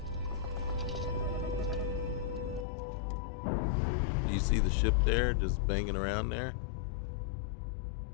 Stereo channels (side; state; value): right; drops out; at 2.7 s